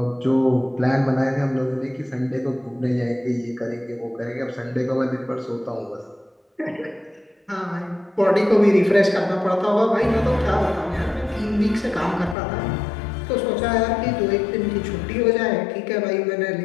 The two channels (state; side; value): drops out; right; at 12.4 s